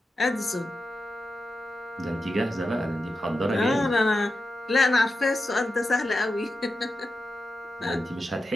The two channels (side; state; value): both; normal; correlation 0.91